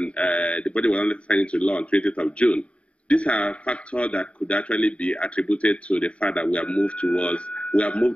the budget was only signed into law on 20th of June. These are factors that could actually be attributed to the fact that we have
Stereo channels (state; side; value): late; right; 0.063 ms